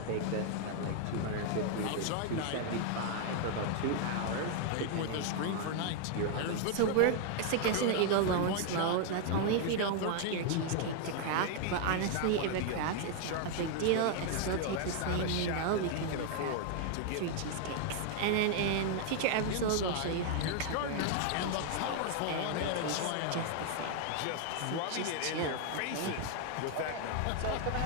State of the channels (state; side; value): different; both; correlation 0.00